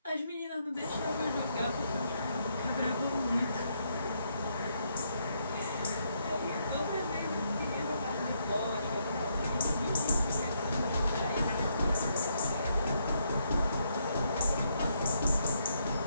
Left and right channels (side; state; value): both; inverted; correlation -0.76